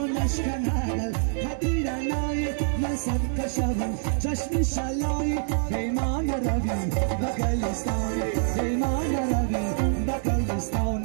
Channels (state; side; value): silent; left; digital silence